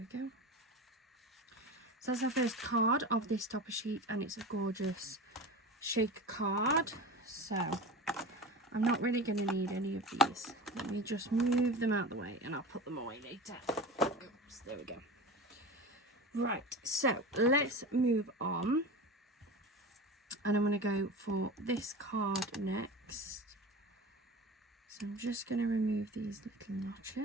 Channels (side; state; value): both; normal; correlation 0.30